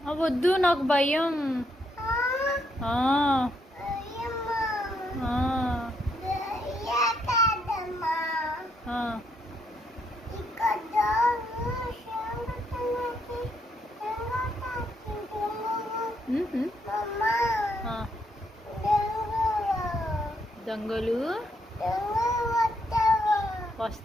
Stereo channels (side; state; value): both; normal; correlation 0.75